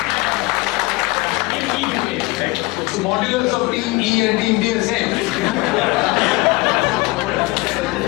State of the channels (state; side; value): quieter; right; 23.3 dB